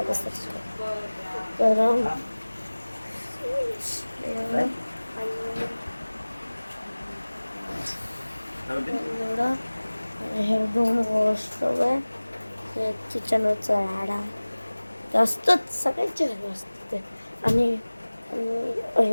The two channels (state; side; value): inverted; both; correlation -1.00